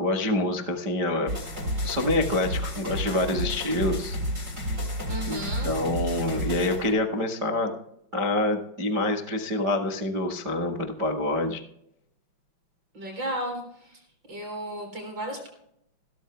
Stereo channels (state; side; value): late; left; 5.4 ms